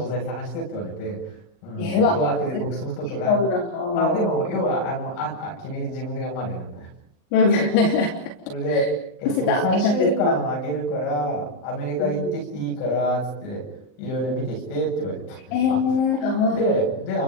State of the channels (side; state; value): right; late; 38 ms